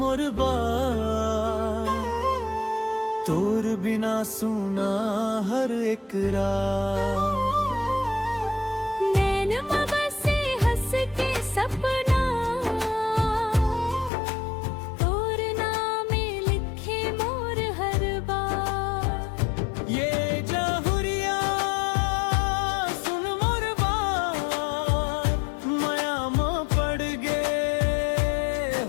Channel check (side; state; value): right; drops out; at 14.1 s